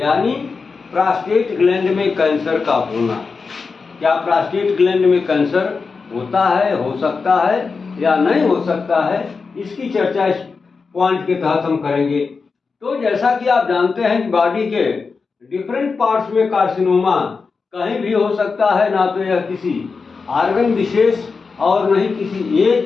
प्रोस्टेट ग्लैंड में कैंसर का होना। क्या प्रोस्टेट ग्लैंड में कैंसर होता है, हो सकता है या नहीं हो सकता है, इसकी चर्चा इस पॉइंट के तहत हम करेंगे। तो जैसा कि आप जानते हैं कि बॉडी के डिफरेंट पार्ट्स में कार्सिनोमा कहीं भी हो सकता है, ना तो यह किसी ऑर्गन विशेष और नहीं किसी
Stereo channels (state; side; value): quieter; right; 4.8 dB